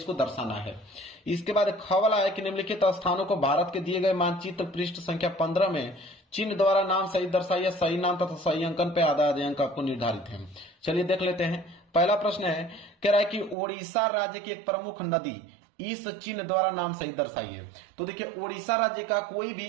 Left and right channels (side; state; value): left; drops out; at 13.6 s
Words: दर्शाना है। इसके बाद ख वाला है कि निम्नलिखित स्थानों को भारत के दिए गए मानचित्र पृष्ठ संख्या 15 में चिन्ह द्वारा नाम सही दर्शाइए, सही नाम तथा सही अंकन पे आधा आधे अंक आपको निर्धारित है। चलिए देख लेते हैं। पहला प्रश्न है, कह रहा है कि ओडिशा राज्य की एक प्रमुख नदी इस चिन्ह द्वारा नाम सही दर्शाइए। तो देखिए ओडिशा राज्य का कोई भी